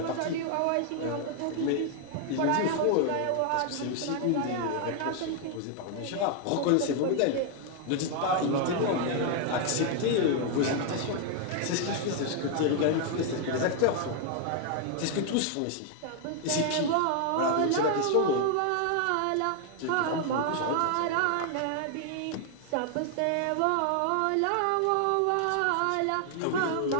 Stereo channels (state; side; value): different; both; correlation 0.00